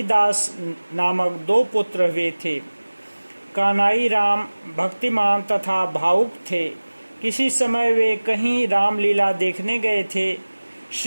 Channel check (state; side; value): inverted; both; correlation -1.00